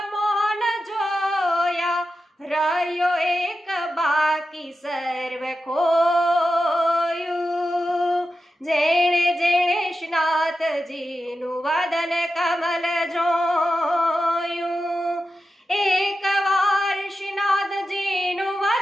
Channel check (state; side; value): normal; both; correlation 0.91